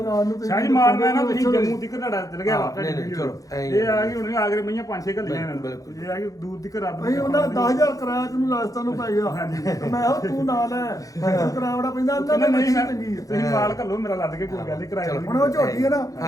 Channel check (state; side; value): late; right; 0.17 ms